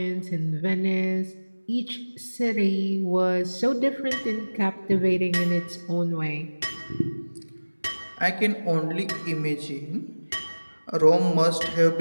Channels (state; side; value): inverted; both; correlation -1.00